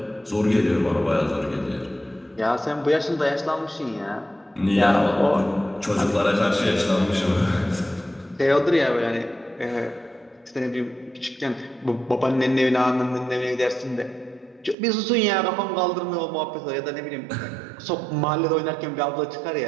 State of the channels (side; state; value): left; drops out; at 14.8 s